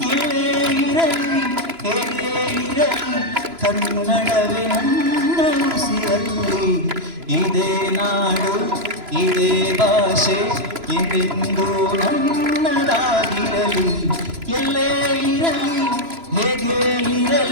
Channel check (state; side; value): late; left; 3.0 ms